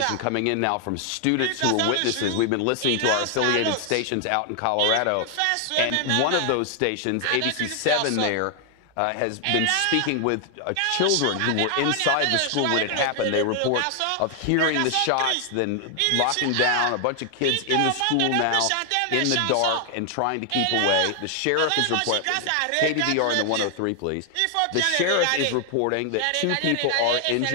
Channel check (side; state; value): both; different; correlation 0.00